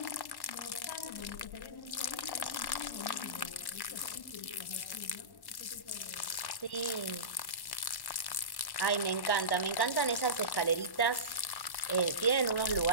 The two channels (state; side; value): late; right; 1.1 ms